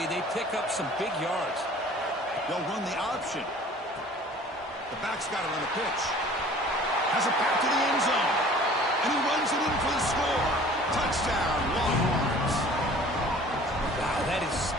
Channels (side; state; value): both; normal; correlation 0.48